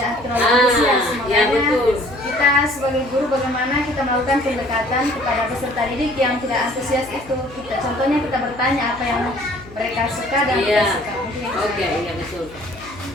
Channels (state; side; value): noise; left; hum, 20 dB below the sound